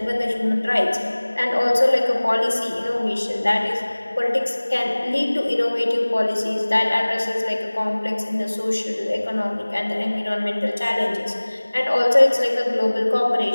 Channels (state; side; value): inverted; both; correlation -1.00